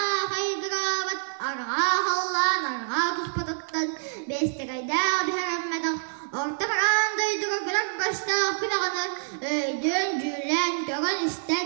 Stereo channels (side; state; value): left; silent; digital silence